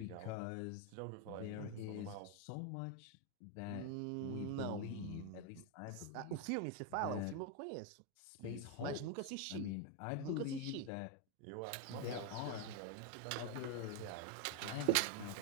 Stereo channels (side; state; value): both; different; correlation 0.01